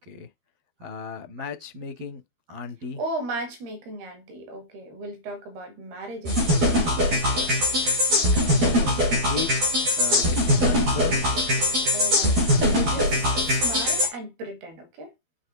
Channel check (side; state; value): left; late; 12 ms